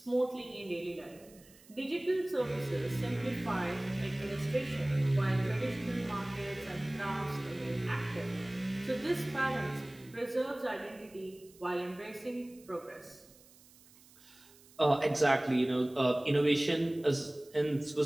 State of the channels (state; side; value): noise; right; hiss, 25 dB below the sound